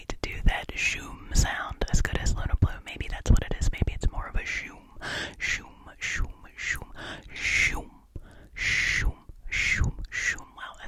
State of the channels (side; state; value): both; identical; correlation 1.00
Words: do that shoom sound as good as Luna Blue. Maybe that's what it is. Maybe it's more of a shoom, shoom, shoom, shoom, shoom, shoom, shoom, shoom. Well,